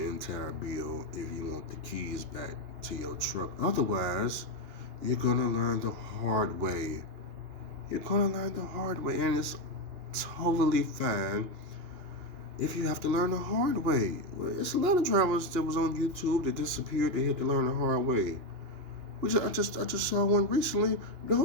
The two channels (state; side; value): late; left; 2.9 ms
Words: entire bill if you want the keys back to your truck. Otherwise, you're gonna learn the hard way. You're gonna learn the hard way, and it's totally fine if you have to learn the hard way. Well, it's a lot of drivers that was on YouTube that disappeared. They had to learn the hard way. I just saw one recently.